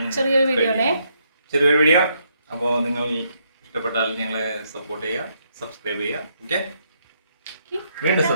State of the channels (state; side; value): inverted; both; correlation -0.74